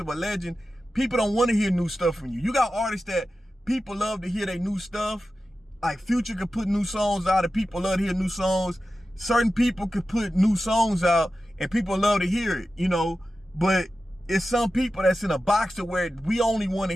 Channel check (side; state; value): both; normal; correlation 0.93